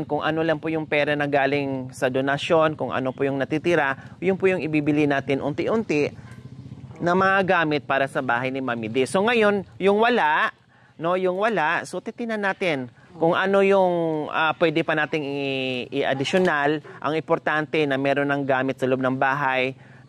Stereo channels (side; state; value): both; identical; correlation 1.00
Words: kung ano lang po yung pera na galing sa donasyon, kung ano po yung natitira, yun po yung ibibili natin unti-unti na mga gamit para sa bahay ni Mami D. So ngayon, yung wala, no, yung wala, so titinan natin kung ano yung pwede pa nating i-additional. Ang importante na meron ng gamit sa loob ng bahay